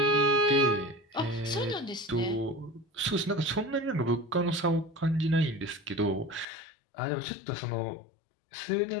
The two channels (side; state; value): right; drops out; at 6.5 s